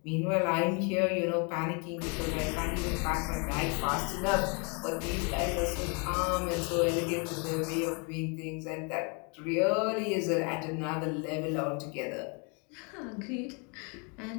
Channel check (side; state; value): right; quieter; 34.3 dB